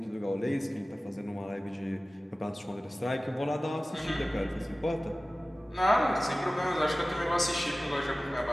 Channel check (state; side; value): normal; both; correlation 0.97